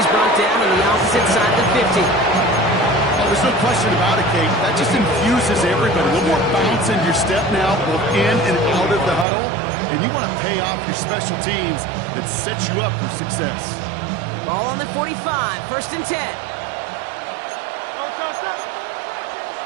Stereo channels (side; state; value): left; drops out; at 9.2 s